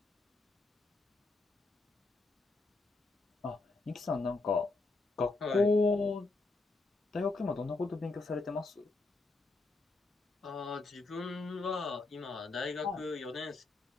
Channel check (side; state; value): right; quieter; 3.5 dB